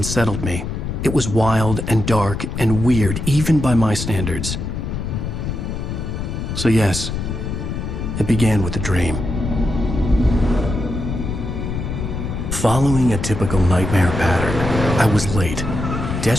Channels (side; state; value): left; noise; rumble, 4 dB below the sound